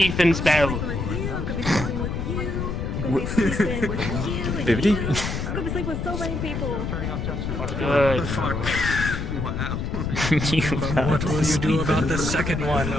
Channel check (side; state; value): left; noise; rumble, 3 dB below the sound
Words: spell. Bibbidi? I'm gonna sleep with so many people. Good. Wow. What will you do about the second one,